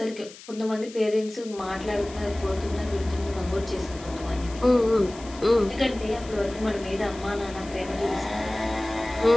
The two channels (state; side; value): noise; left; hiss, 18 dB below the sound